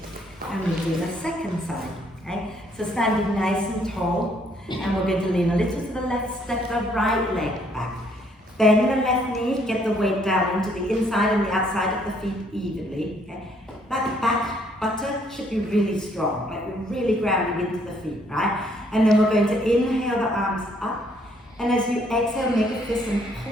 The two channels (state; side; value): normal; both; correlation 0.67